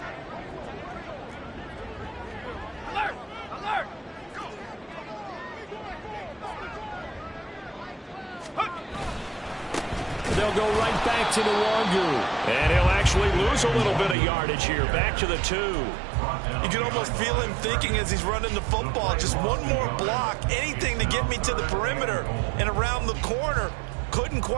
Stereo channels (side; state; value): left; drops out; at 14.2 s